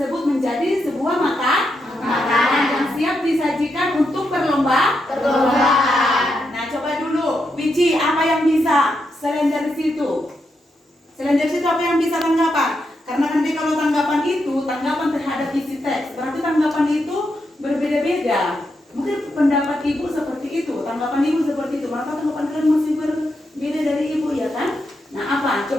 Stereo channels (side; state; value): both; normal; correlation 0.83